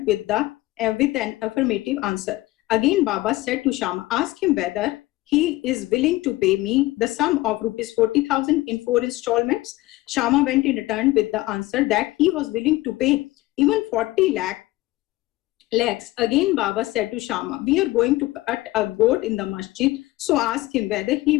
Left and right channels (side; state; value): right; quieter; 18.3 dB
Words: with an affirmative answer. Again, Baba said to Shama, ask him whether he is willing to pay me the sum of rupees 40,000 in 4 installments. Shama went and returned with the answer that he was willing to pay even 40 lakhs. Again, Baba said to Shama, we are going to cut a goat in the masjid, so ask him whether he